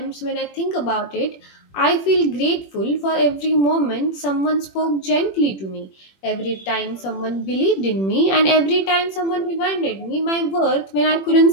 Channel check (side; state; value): right; late; 21 ms